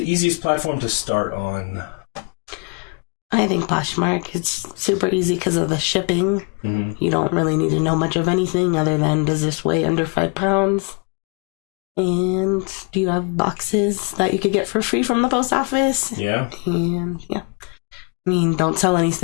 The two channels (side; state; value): right; quieter; 33.9 dB